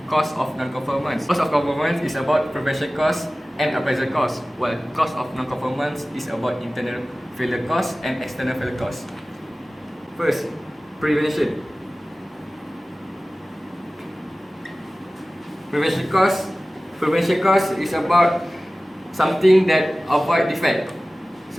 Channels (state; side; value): normal; both; correlation 0.97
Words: cost of non-conformance. Cost of conformance is about prevention cost and appraisal cost, while cost of non-conformance is about internal failure cost and external failure cost. First, prevention. Prevention cost is about something that avoid defect,